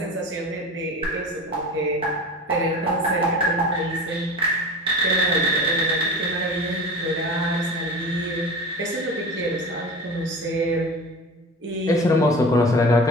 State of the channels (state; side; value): normal; both; correlation 0.33